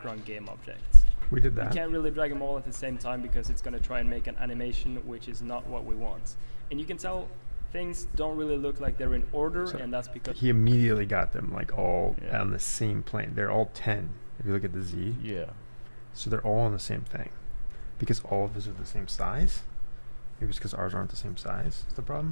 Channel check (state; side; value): inverted; both; correlation -1.00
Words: game object. We did You that. can't really drag them all at the same time because it's going to try and make an animation which is not what we want. And you can tell things don't really look like they're in order, So and that's because He immediately got them like all Yeah. on the same plane. They're all 10. If you look at the Z, Yeah. so they're all on the same thing. Because all of his are the same size. Maybe it's because ours aren't the same size. Is the